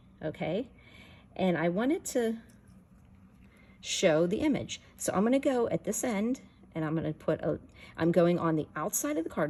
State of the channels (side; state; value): both; identical; correlation 1.00